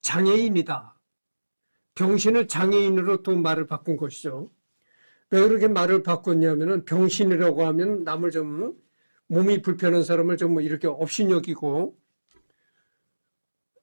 장애인이다. 병신을 장애인으로 또 말을 바꾼 것이죠. 왜 그렇게 말을 바꿨냐면은 병신이라고 하면 남을 좀 몸이 불편한 사람을 좀 이렇게 업신여기고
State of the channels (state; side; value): inverted; both; correlation -1.00